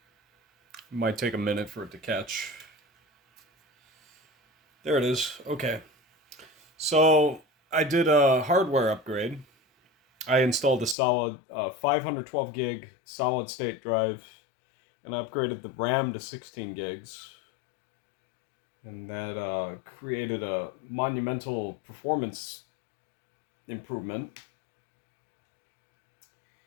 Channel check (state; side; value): drops out; right; at 11.0 s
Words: It might take a minute for it to catch. There it is. Okay. So I did a hardware upgrade. I installed a solid 512 gig solid state drive, and I upgraded the RAM to 16 gigs. And that created a monumental performance improvement.